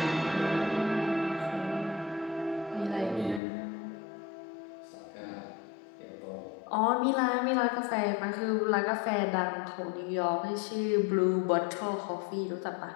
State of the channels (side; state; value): right; drops out; at 3.4 s